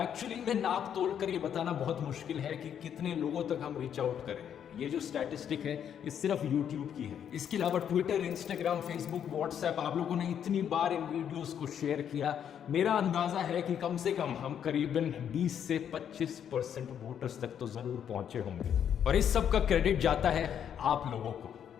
में नाप तोल कर ये बताना बहुत मुश्किल है कि कितने लोगों तक हम रीच आउट करें। ये जो स्टैटिस्टिक है ये सिर्फ YouTube की है। इसके अलावा ट्विटर, इंस्टाग्राम, फेसबुक, व्हाट्सएप आप लोगों ने इतनी बार इन वीडियोस को शेयर किया, मेरा अंदाजा है कि कम से कम हम करीबन 20 से 25% वोटर्स तक तो जरूर पहुंचे होंगे। और इस सब का क्रेडिट जाता है आप लोगों को।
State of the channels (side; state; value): right; quieter; 8.9 dB